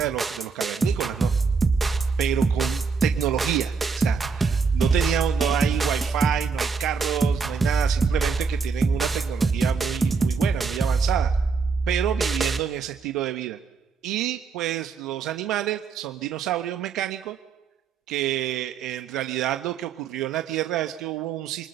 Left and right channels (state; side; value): quieter; left; 5.4 dB